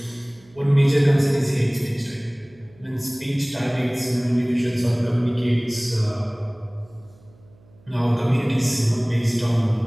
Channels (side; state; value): right; noise; hum, 28 dB below the sound